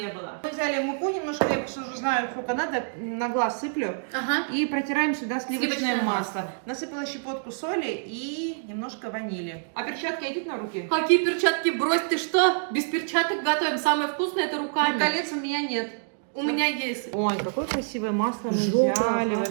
было. Мы взяли муку немножко, я просто уже знаю, сколько надо, на глаз сыплю. Ага. И протираем сюда сливочное Сливочное масло. Насыпала щепотку соли и немножко ванили. А перчатка идет на руки? Какие перчатки? Брось, ты что? Без перчаток готовим. Самое вкусное это Ну, руками. колец у меня нет. У меня есть. Ой, какое красивое масло мы Желтое, взяли ага.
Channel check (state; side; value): silent; left; digital silence